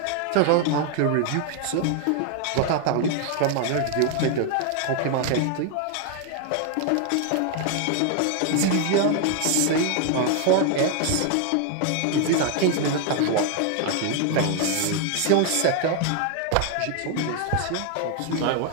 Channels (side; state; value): both; different; correlation 0.00